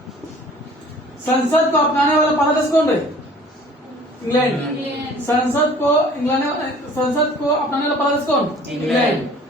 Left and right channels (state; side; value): normal; both; correlation 0.49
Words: संसद को अपनाने वाला पहला देश कौन रहे? इंग्लैंड। संसद को अपनाने वाला पहला देश कौन? इंग्लैंड।